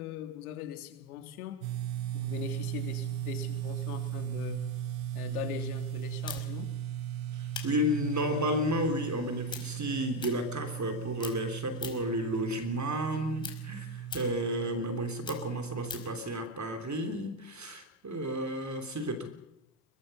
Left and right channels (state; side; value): normal; both; correlation 0.09